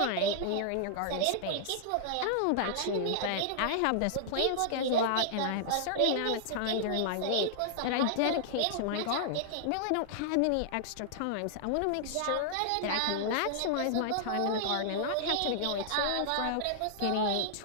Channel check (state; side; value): different; both; correlation -0.01